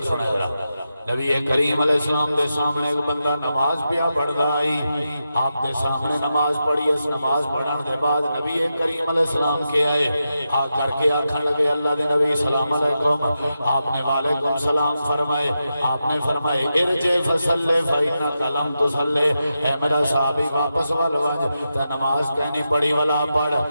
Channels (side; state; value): both; inverted; correlation -0.88